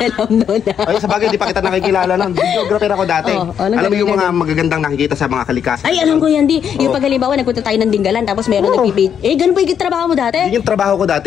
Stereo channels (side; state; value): right; quieter; 8.3 dB